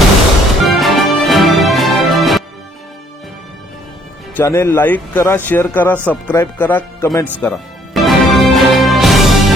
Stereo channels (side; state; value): both; normal; correlation 0.63